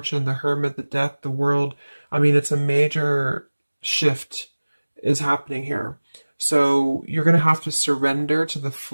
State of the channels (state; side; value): inverted; both; correlation -1.00